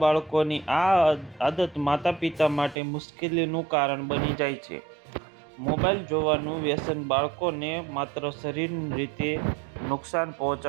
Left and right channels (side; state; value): left; drops out; at 2.8 s